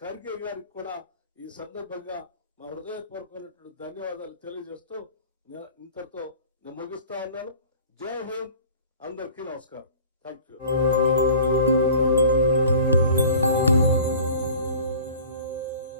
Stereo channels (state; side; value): inverted; both; correlation -0.45